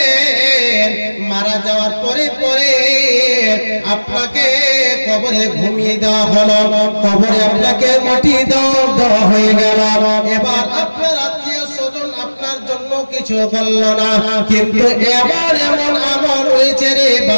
মারা যাওয়ার পরে পরে আপনাকে কবরে ঘুমিয়ে দেওয়া হলো, কবরে আপনাকে মাটি দেওয়া হয়ে গেল। এবার আপনার আত্মীয় স্বজন আপনার জন্য কিছু বলল না, কিন্তু এবার এমন আমল হয়েছে রে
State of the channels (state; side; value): inverted; both; correlation -1.00